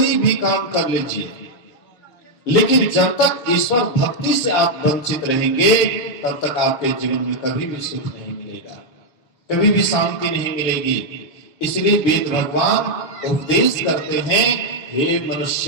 भी काम कर लीजिए, लेकिन जब तक ईश्वर भक्ति से आप वंचित रहेंगे तब तक आपके जीवन में कभी भी सुख नहीं मिलेगा, कभी भी शांति नहीं मिलेगी। इसलिए वेद भगवान उपदेश करते हैं, हे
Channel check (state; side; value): late; right; 6.5 ms